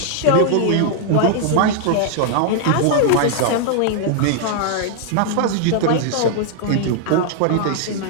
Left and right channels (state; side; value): different; both; correlation -0.01